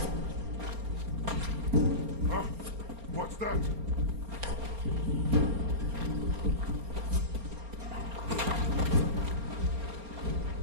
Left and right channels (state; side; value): late; left; 4.3 ms